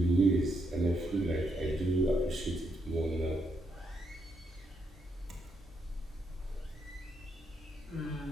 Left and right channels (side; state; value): both; normal; correlation 0.78